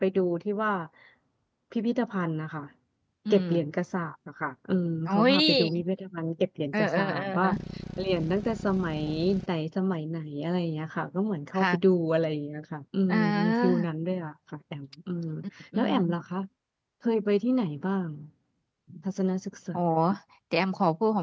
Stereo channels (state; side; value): identical; both; correlation 1.00